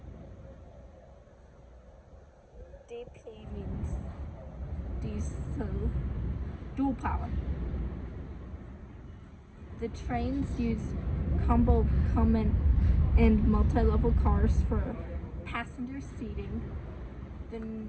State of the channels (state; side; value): identical; both; correlation 1.00